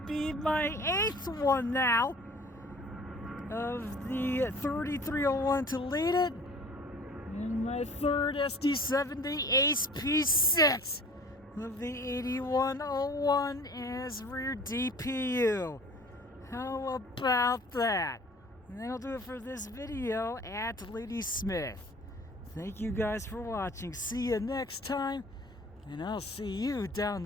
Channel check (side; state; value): both; normal; correlation 0.47